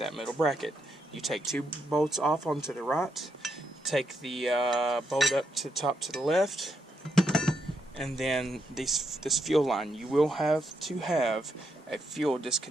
middle bracket. You take two bolts off onto the right, take the bolt up to the top to the left, and then this fuel line. You will have to have a fuel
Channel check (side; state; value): both; normal; correlation 0.79